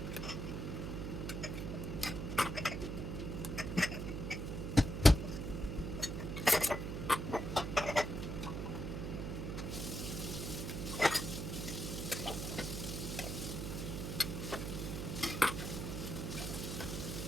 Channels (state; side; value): noise; right; hum, 3 dB below the sound